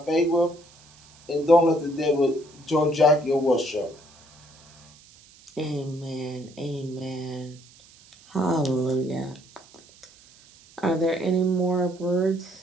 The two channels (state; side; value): noise; right; hiss, 26 dB below the sound